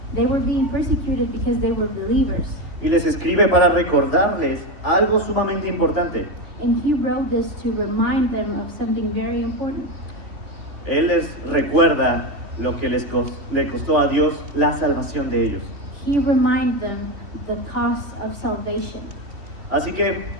They were being persecuted because they were believers. Y les escribe para recordarles algo sumamente importante. And he wrote this to remind them of something very important. Él les recuerda lo que le costó a Dios la salvación de ellos. He reminded them the cost of salvation. Así que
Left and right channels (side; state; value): left; late; 3.3 ms